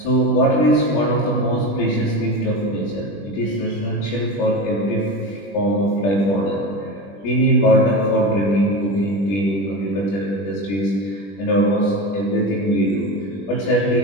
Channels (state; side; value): late; right; 20 ms